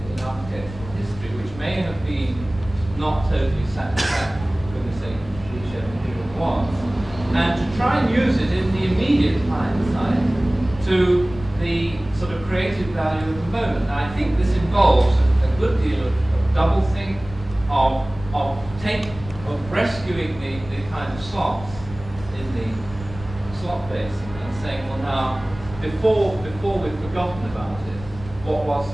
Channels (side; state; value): left; noise; rumble, 15 dB below the sound